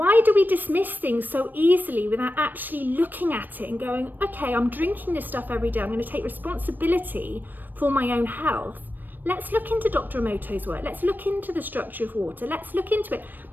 do we dismiss things so easily without actually looking at it and going, okay, I'm drinking this stuff every day. I'm going to take responsibility for my own health. Let's look into Dr. Emoto's work. Let's look into the structure of water. Let's look into it.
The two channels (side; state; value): left; late; 0.091 ms